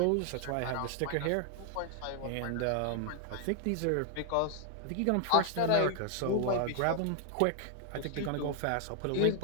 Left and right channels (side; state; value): both; different; correlation 0.00